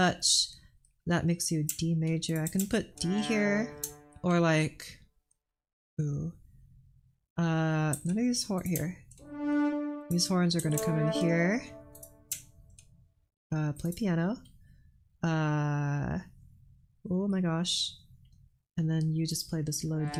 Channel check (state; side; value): identical; both; correlation 1.00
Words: That makes you D major. I can put D here, or like, ooh, none of these horns here. These horns are gonna come in here. Play piano. Oh my gosh. And then you just play this low D